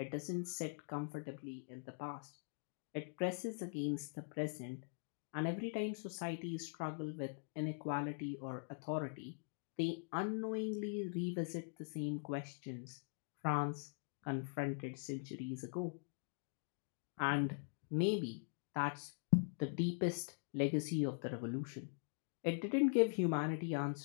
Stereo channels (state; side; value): silent; right; digital silence